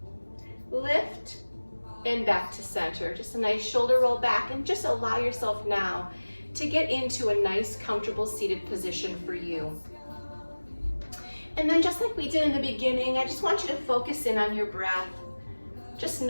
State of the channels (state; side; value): inverted; both; correlation -1.00